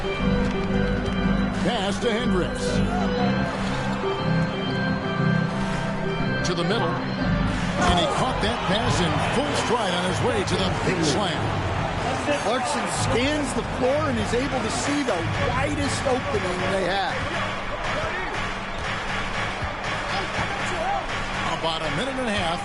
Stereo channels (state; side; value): identical; both; correlation 1.00